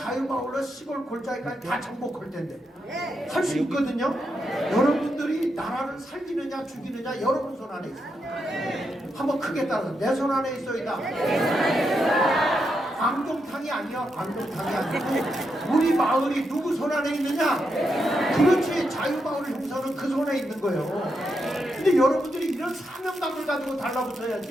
시골 골짜기까지 다 정복할 텐데 할 수 있거든요. 여러분들이 나라를 살리느냐 죽이느냐 여러분 손 안에 있어요. 한번 크게 따라서 내 손 안에 있어이다. 광종탕이 아니야. 광종탕이 아니고 우리 마을이 누구 손 안에 있느냐? 그렇지. 자유마을 형사는 그 손에 있는 거예요. 근데 여러분들이 이런 사명감을 가지고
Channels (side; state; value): both; normal; correlation 0.83